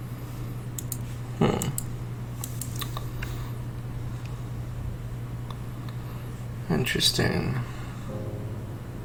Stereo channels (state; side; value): identical; both; correlation 1.00